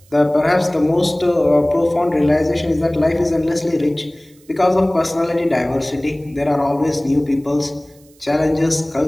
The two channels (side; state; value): right; noise; hiss, 30 dB below the sound